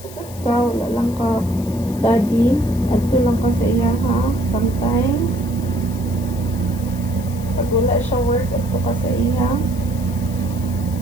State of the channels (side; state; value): left; noise; hiss, 18 dB below the sound